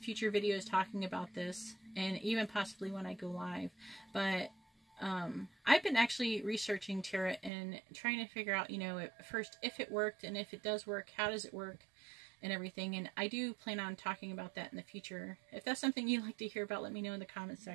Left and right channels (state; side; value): drops out; left; at 7.5 s